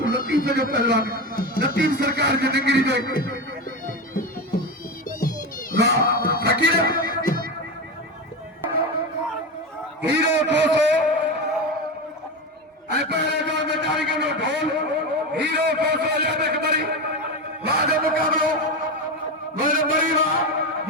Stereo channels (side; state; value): both; normal; correlation 0.19